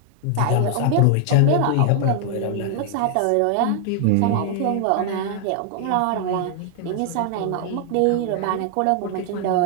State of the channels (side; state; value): both; different; correlation 0.00